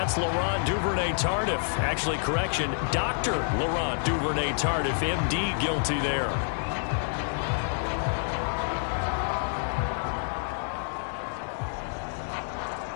Laurent Duvernay-Tardif. Actually, correction, Dr. Laurent Duvernay-Tardif, MD, guilty there.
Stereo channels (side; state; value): right; silent; digital silence